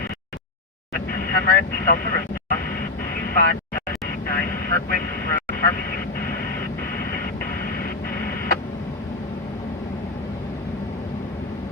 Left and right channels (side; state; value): right; quieter; 3.0 dB